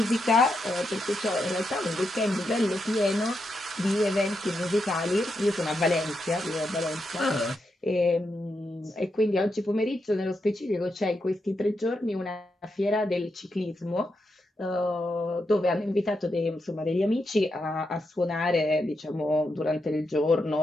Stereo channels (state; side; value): normal; both; correlation 0.84